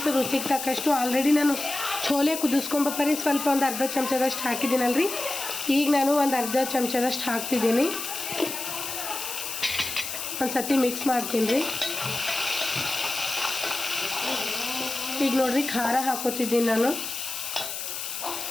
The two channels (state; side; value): noise; left; hiss, 6 dB below the sound